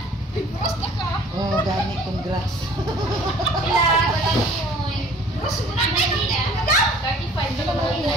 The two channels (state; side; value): normal; both; correlation 0.52